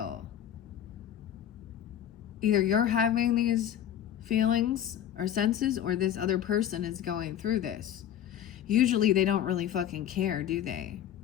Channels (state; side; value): quieter; right; 10.5 dB